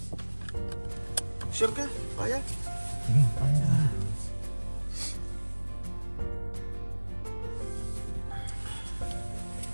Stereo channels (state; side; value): inverted; both; correlation -1.00